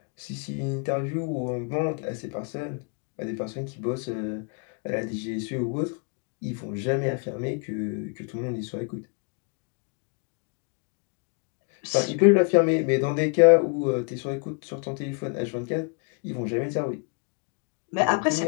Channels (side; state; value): right; quieter; 36.1 dB